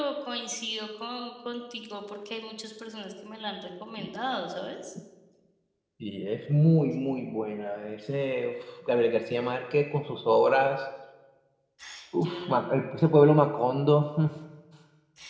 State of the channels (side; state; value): both; identical; correlation 1.00